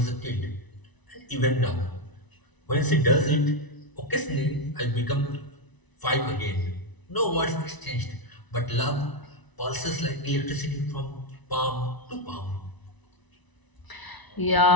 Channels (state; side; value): late; right; 1.0 ms